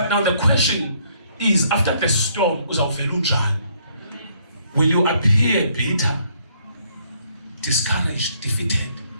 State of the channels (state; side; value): inverted; both; correlation -0.67